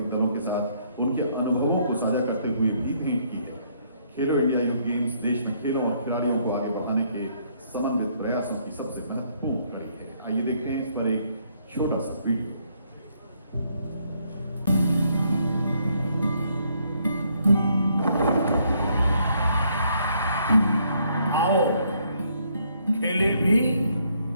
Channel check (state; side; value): inverted; both; correlation -0.70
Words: दलों के साथ उनके अनुभवों को साझा करते हुए भी ट्वीट की है। खेलो इंडिया यूथ गेम्स देश में खेलों और खिलाड़ियों को आगे बढ़ाने के समन्वित प्रयासों की सबसे महत्वपूर्ण कड़ी है। आइए देखते हैं इस पर एक छोटा सा वीडियो। आओ खेले भी